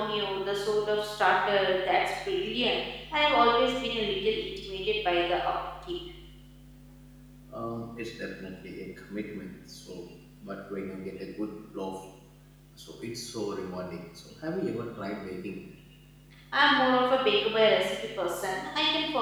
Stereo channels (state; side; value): identical; both; correlation 1.00